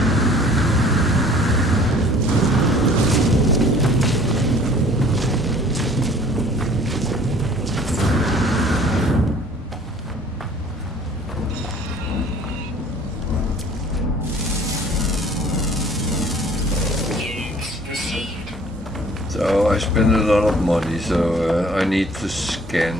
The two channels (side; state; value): both; normal; correlation 0.52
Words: I spend a lot of money, so I need to scan